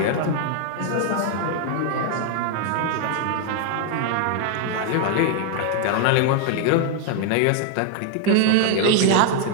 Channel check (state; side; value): different; both; correlation 0.00